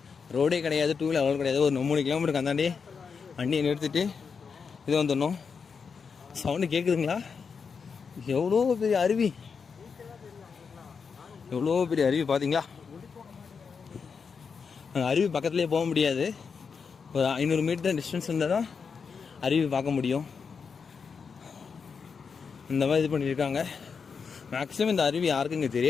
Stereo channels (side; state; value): right; quieter; 5.8 dB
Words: ரோடே கிடையாது, டூ வீலர் அலோடு கிடையாது. ஒரு 3 கிலோமீட்டருக்கு அந்தாண்டி வண்டியை நிறுத்திட்டு இது வந்துடணும். சவுண்டு கேட்குதுங்களா? எவ்வளோ பெரிய அருவி, எவ்வளோ பெரிய அருவி பார்த்தீங்களா? அருவி பக்கத்துலேயே போக முடியாது. ஒரு 500 மீட்டர் டிஸ்டன்ஸ் இருந்தால் தான் அருவி பார்க்க முடியும். இந்த மாதிரி இது பண்ணியிருக்காங்க. மேக்ஸிமம் இந்த அருவி யாருக்கும் இங்கே